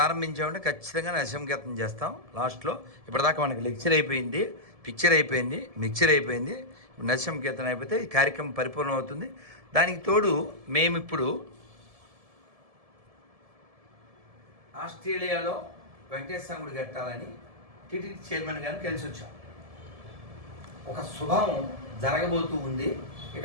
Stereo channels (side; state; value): left; late; 1.7 ms